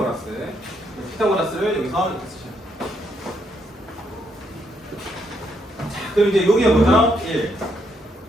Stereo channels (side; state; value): both; normal; correlation 0.75